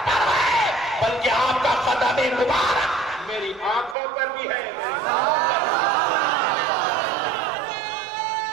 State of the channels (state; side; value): drops out; left; at 4.0 s